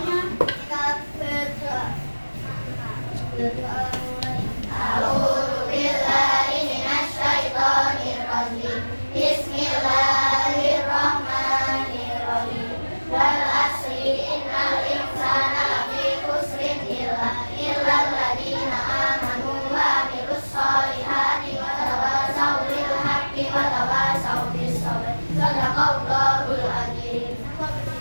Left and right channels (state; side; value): inverted; both; correlation -1.00